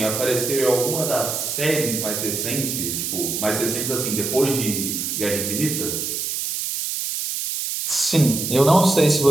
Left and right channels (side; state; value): right; noise; hiss, 3 dB below the sound